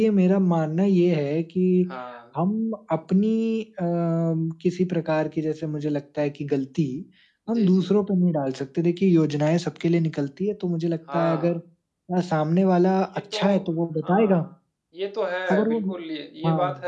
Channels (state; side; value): identical; both; correlation 1.00